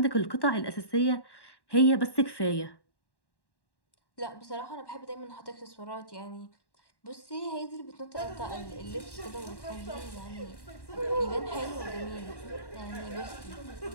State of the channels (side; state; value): right; late; 1.1 ms